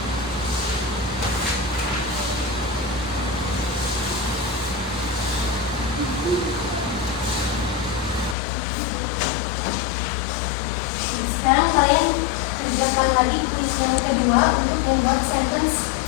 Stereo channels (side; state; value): right; drops out; at 8.3 s